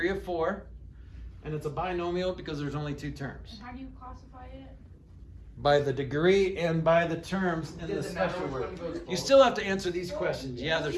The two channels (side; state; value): both; identical; correlation 1.00